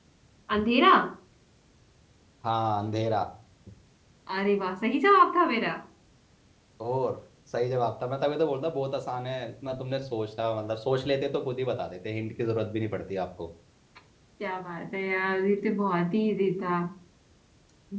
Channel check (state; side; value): identical; both; correlation 1.00